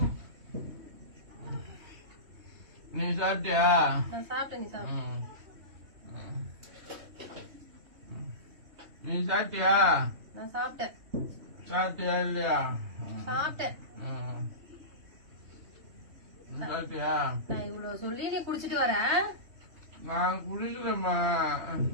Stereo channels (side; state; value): left; late; 3.2 ms